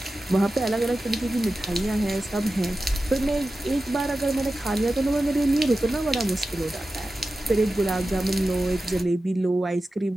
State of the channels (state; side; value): normal; both; correlation 0.93